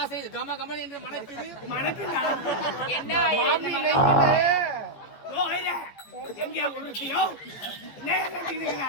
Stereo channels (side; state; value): right; late; 15 ms